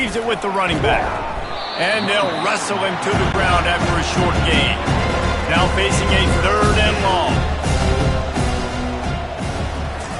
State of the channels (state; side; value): identical; both; correlation 1.00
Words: it with the running back. And they'll wrestle him to the ground after a short gain. Now facing a third and long.